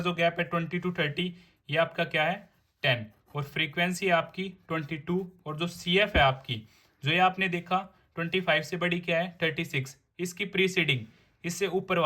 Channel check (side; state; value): both; identical; correlation 1.00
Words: गैप है 20 to 30, ये आपका क्या है 10। और फ्रीक्वेंसी है आपकी 22। और जो CF है आपकी, जो ये आपने देखा 25 से बड़ी क्या है 36, इसकी प्रीसीडिंग, इससे ऊपर